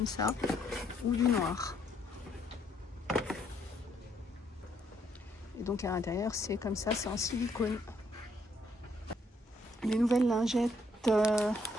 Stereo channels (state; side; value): normal; both; correlation 0.71